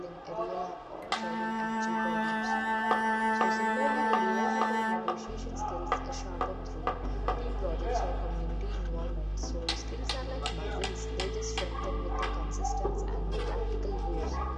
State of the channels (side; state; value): both; identical; correlation 1.00